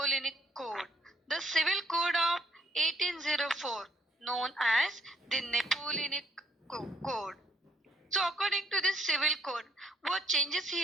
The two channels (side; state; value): both; normal; correlation 0.66